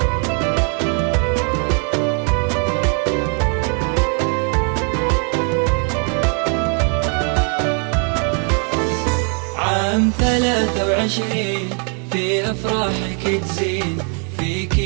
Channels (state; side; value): quieter; left; 39.4 dB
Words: عام 23 في أفراحك تزين، فيك